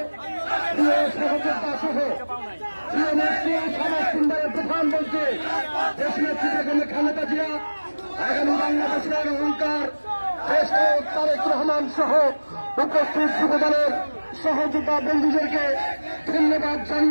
প্রিয় সহযোদ্ধা সহ প্রিয় নেত্রী সমাজ সুন্দরের প্রধানমন্ত্রী দেশ নেত্রী বেগম খালেদা জিয়া, আগামী বাংলাদেশের অহংকার দেশ তারেক রহমান সহ উপস্থিত যুবদলের সহযোদ্ধা বন্ধুদেরকে ধন্যবাদ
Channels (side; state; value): both; inverted; correlation -1.00